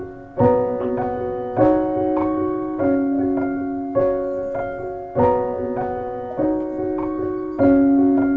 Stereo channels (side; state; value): both; identical; correlation 1.00